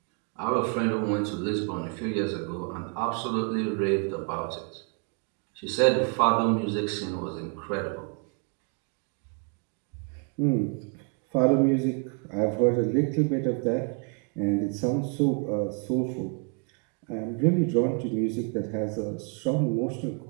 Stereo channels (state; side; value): quieter; left; 37.1 dB